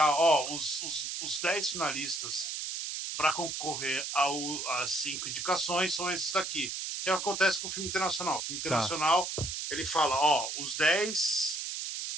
os 10 finalistas para concorrer às 5 indicações são esses daqui. Que acontece com o filme internacional. O filme Tá. internacional, ele fala, os 10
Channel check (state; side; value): noise; right; hiss, 4 dB below the sound